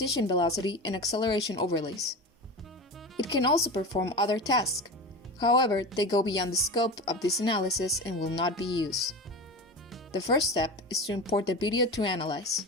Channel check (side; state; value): both; normal; correlation 0.27